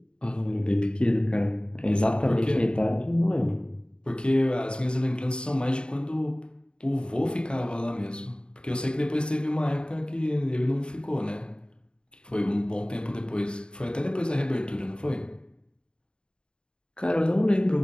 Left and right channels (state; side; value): late; right; 0.051 ms